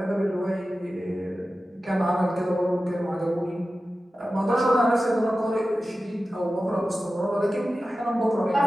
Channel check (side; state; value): both; normal; correlation 0.94